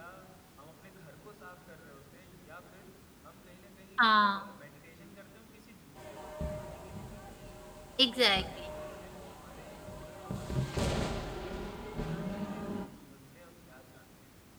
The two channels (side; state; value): both; identical; correlation 1.00